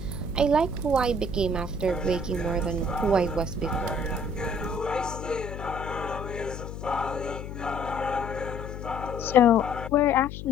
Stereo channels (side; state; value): left; noise; hum, 9 dB below the sound